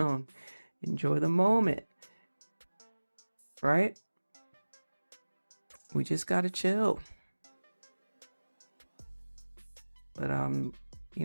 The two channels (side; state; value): both; inverted; correlation -1.00